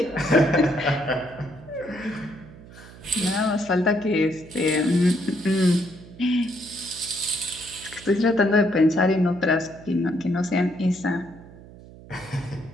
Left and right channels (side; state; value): right; noise; hum, 19 dB below the sound